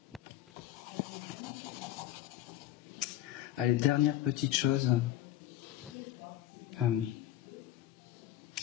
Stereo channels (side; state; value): right; quieter; 13.4 dB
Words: Allez, dernière petite chose.